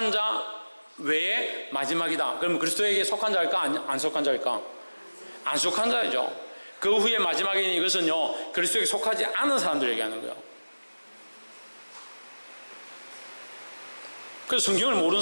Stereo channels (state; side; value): inverted; both; correlation -1.00